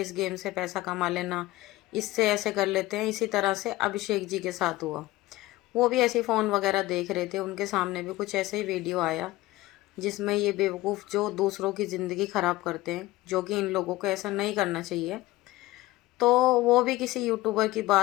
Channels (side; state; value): right; quieter; 18.0 dB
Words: गेम से पैसा कमा लेना, इससे ऐसे कर लेते हैं। इसी तरह से अभिषेक जी के साथ हुआ। वो भी ऐसे फ़ोन वगैरह देख रहे थे, उनके सामने भी कुछ ऐसे ही वीडियो आया जिसमें ये बेवकूफ़ जो दूसरों की ज़िंदगी ख़राब करते हैं, जो कि इन लोगों को ऐसा नहीं करना चाहिए। तो वो भी किसी यूट्यूबर की